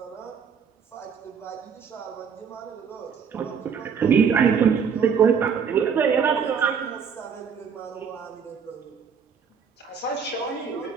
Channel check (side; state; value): left; quieter; 6.7 dB